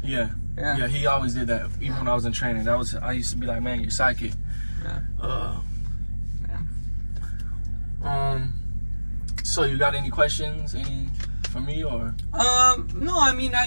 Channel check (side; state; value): both; inverted; correlation -1.00